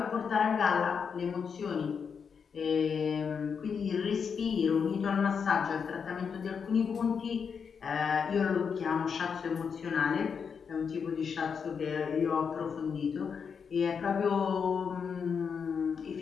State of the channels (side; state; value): right; quieter; 6.3 dB